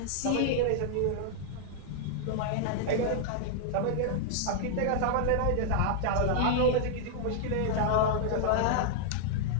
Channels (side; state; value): both; different; correlation -0.01